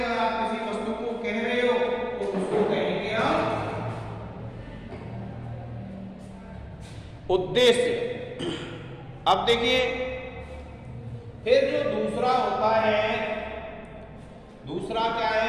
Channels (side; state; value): both; identical; correlation 1.00